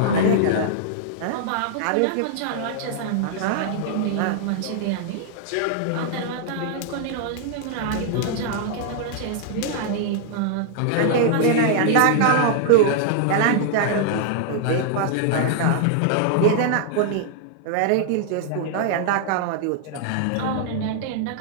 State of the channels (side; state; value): both; different; correlation -0.01